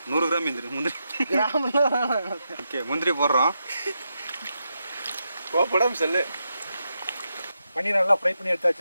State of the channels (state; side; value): inverted; both; correlation -0.85